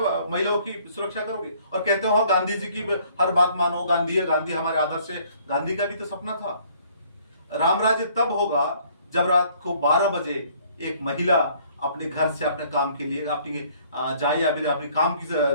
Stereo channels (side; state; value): both; inverted; correlation -0.60